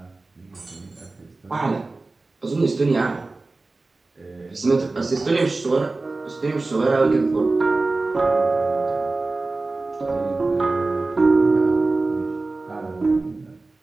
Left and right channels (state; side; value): quieter; left; 3.4 dB